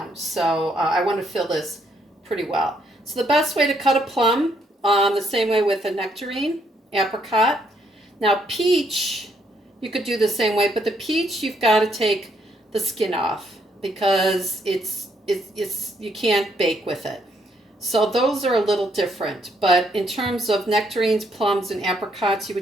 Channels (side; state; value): both; normal; correlation 0.72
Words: so I want to fill this pretty well. So the best way to cut a plum, the same way with a nectarine, apricot. Now peach, you could do the same way, but the peach you've got to take the skin off because it's you can't bake with it. So those are a little different, but in terms of nectarines, plums, and apricots, you